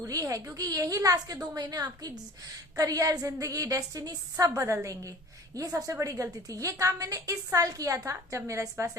है, क्योंकि यही लास्ट के 2 महीने आपकी करियर, जिंदगी, डेस्टिनी सब बदल देंगे। ये सबसे बड़ी गलती थी। ये काम मैंने इस साल किया था जब मेरा इस बार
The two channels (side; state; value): both; normal; correlation 0.44